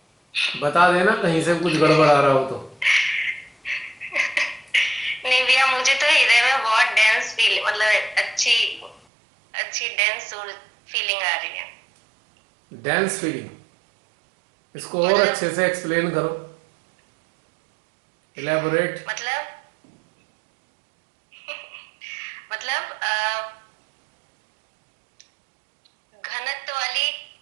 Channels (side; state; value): left; drops out; at 9.0 s